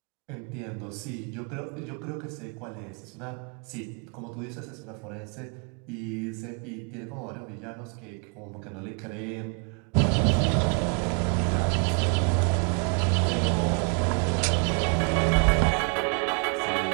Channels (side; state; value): left; quieter; 38.4 dB